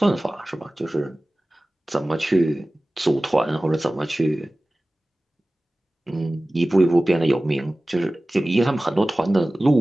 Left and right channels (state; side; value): normal; both; correlation 0.97